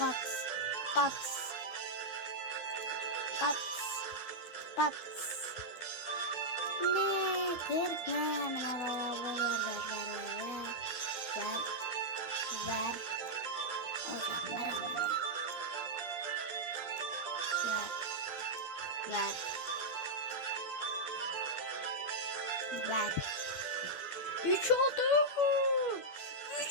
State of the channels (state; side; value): late; right; 12 ms